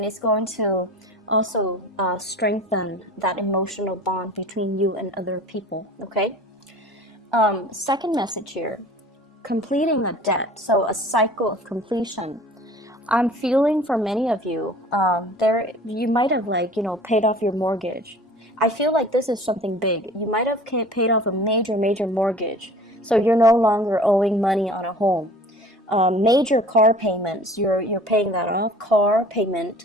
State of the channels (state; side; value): normal; both; correlation 0.44